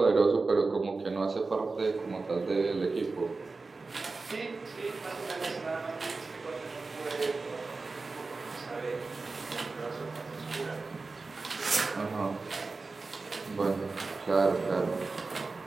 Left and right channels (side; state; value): left; quieter; 3.9 dB